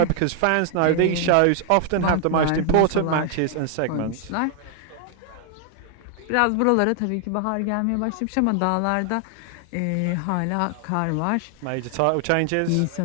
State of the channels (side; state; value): both; different; correlation 0.00